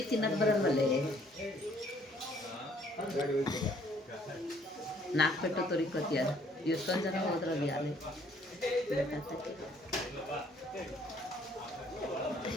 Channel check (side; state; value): both; normal; correlation 0.62